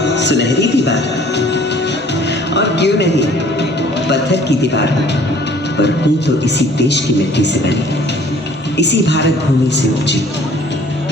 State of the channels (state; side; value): normal; both; correlation 0.54